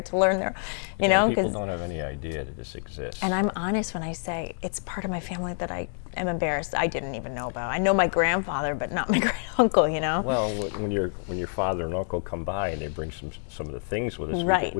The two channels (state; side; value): silent; right; digital silence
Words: to learn their, People 'cause- don't have any idea that this exists. and I'm honest when I say it's part of my family that I am embarrassed I didn't even know about. I know my grandfather, but not my great uncle. Well, when your father and uncle come by and they bring some of the things with us, Right.